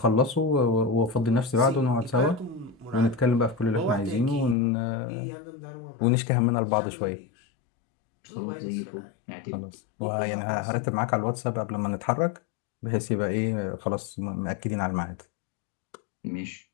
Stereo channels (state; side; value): drops out; right; at 4.5 s